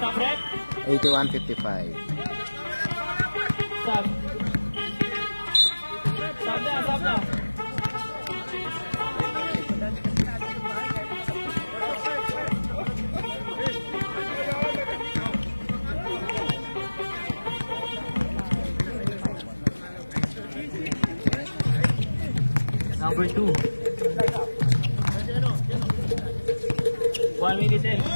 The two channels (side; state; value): both; inverted; correlation -1.00